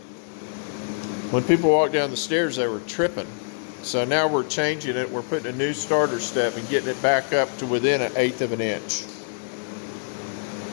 when people walk down the stairs, they were tripping. So now we're changing it. We're putting a new starter step and getting it back up to within 1/8 of an inch.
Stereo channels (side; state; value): right; silent; digital silence